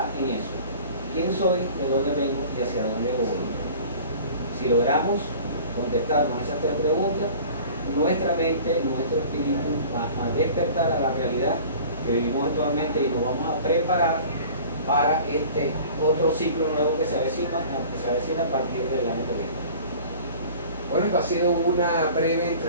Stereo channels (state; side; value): inverted; both; correlation -0.44